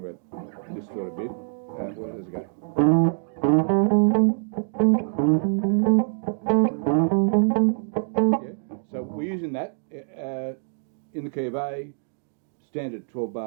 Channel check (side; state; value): left; silent; digital silence